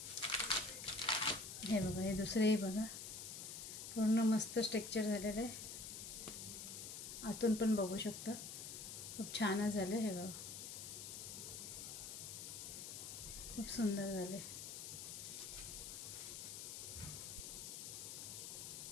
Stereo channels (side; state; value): left; noise; hiss, 7 dB below the sound